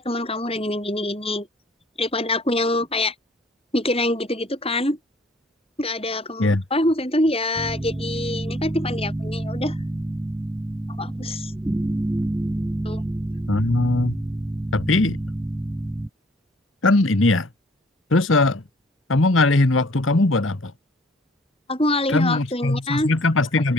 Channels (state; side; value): normal; both; correlation 0.59